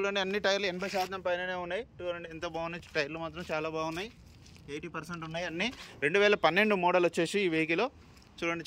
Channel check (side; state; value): both; identical; correlation 1.00